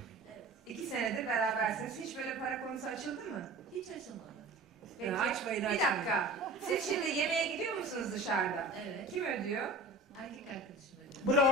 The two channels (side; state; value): both; normal; correlation 0.39